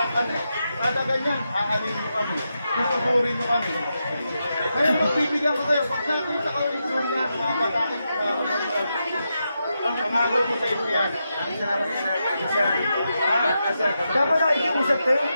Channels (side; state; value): both; inverted; correlation -0.86